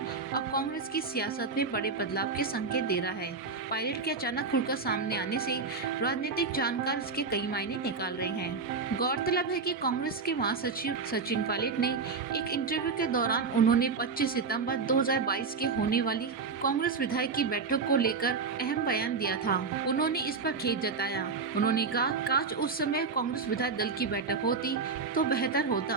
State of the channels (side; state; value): left; quieter; 4.8 dB